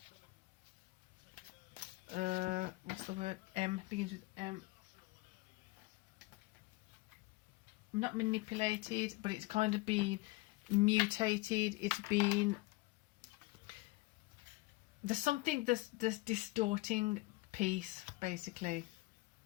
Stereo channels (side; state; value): right; quieter; 22.0 dB